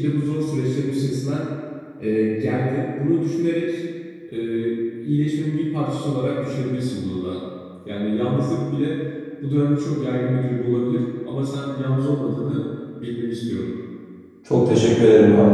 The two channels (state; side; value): identical; both; correlation 1.00